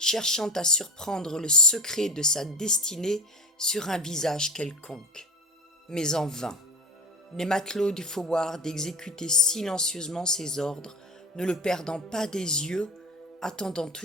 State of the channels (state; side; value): normal; both; correlation 0.31